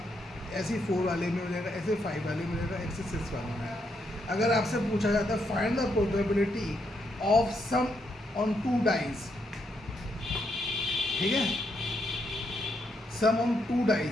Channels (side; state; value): both; normal; correlation 0.78